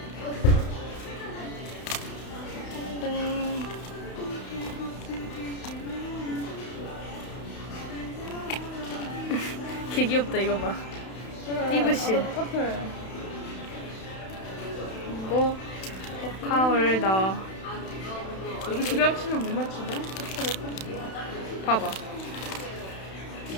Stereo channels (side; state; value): right; late; 31 ms